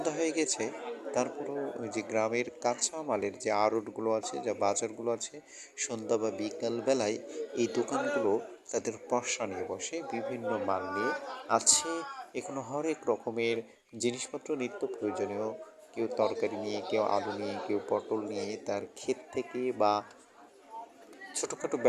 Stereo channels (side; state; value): both; identical; correlation 1.00